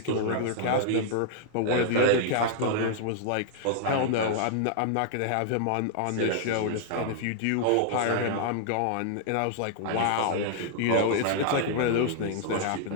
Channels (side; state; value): both; different; correlation -0.01